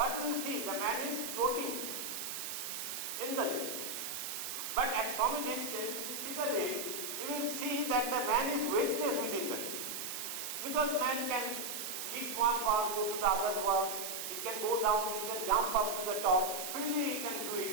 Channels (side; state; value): right; noise; hiss, 4 dB below the sound